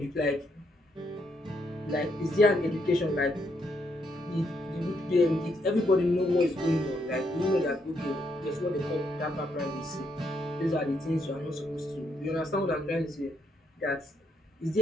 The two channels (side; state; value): both; normal; correlation 0.75